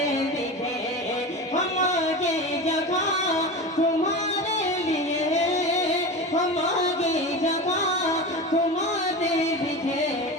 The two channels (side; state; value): both; normal; correlation 0.27